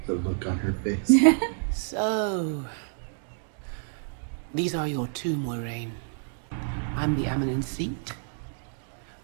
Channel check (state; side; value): silent; left; digital silence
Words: The look on her face. So, these are your two, Moiraine. I'm the Amelin seat,